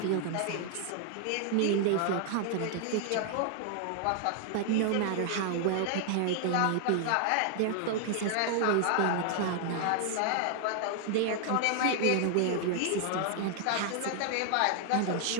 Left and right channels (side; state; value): both; different; correlation 0.00